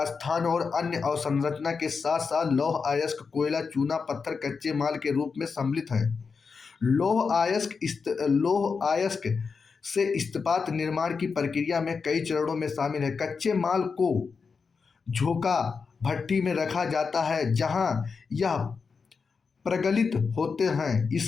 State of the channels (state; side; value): quieter; right; 5.2 dB